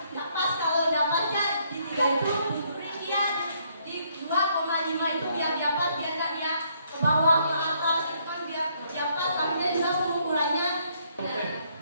Nggak pas kalau dapatnya di 3 itu diberi dia di 2,5 itu biar dapat biar nggak dia ke bawah ke atas itu kan biar dapat kaminya juga pengukurannya.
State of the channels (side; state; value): both; inverted; correlation -0.69